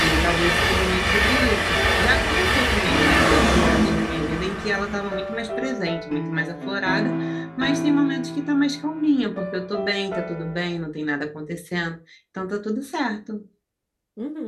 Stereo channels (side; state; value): both; identical; correlation 1.00